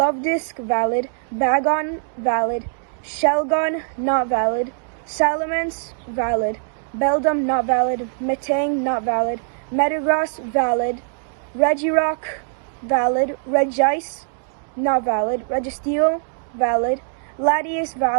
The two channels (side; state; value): left; silent; digital silence